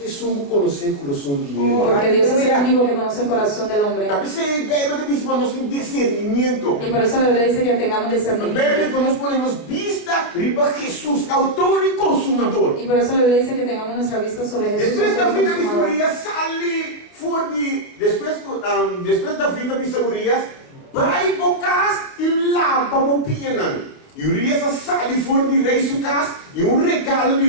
songo conhecer o coração de ele. Porque Dios es el único que conoce el corazón del hombre. Talvez a Bíblia diz para nós ter discernimento. Y por eso la Biblia dice que tengamos A Bíblia discernimiento. para nós podemos vista riba Jesús, autor y consumador. Y por eso la Biblia dice que tengamos nuestra vista sobre Jesús. Después autor y David de consumador. Urias sale fuera de... Después David de Urias vai bocas e lava o pianan. E Urias sale fora de rei su casa e regalo de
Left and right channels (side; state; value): right; late; 29 ms